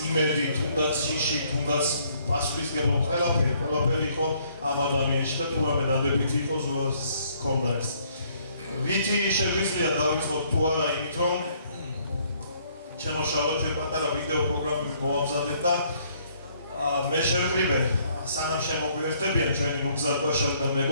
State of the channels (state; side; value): inverted; both; correlation -0.65